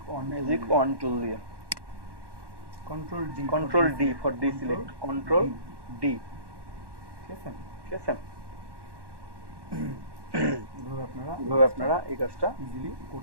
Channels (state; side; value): late; left; 1.1 ms